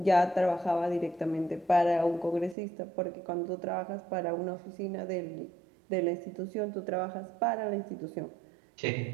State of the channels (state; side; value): drops out; left; at 2.6 s